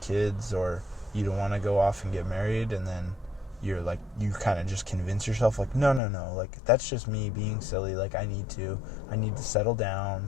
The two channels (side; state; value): right; drops out; at 6.0 s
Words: kids or you don't want to go off and get married, and then you're like, you kind of just convince yourself like, no, like that's just me being silly, like I need to settle